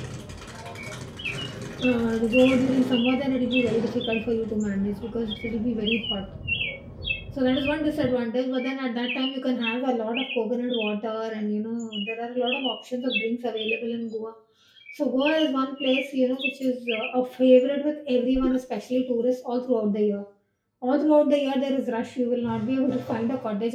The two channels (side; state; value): both; identical; correlation 1.00